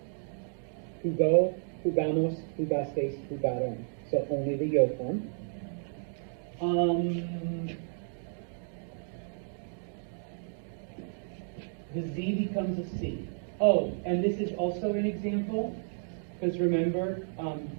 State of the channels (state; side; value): silent; left; digital silence